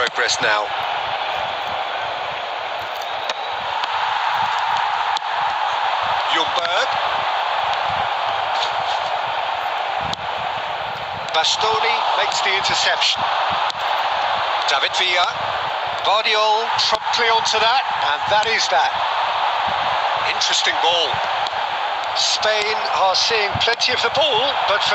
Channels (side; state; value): both; identical; correlation 1.00